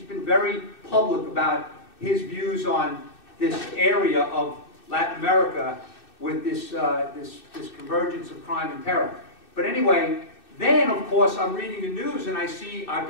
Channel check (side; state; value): right; late; 2.6 ms